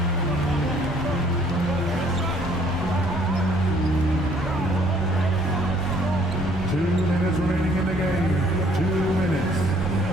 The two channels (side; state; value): both; normal; correlation 0.61